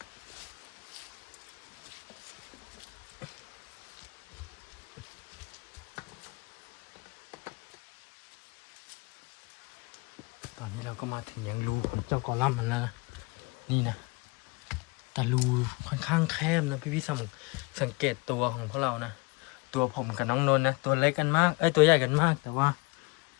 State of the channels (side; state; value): right; quieter; 26.6 dB